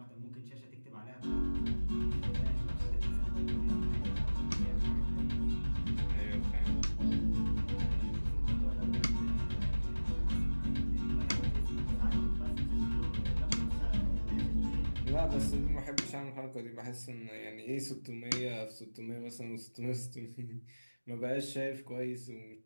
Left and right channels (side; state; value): both; inverted; correlation -1.00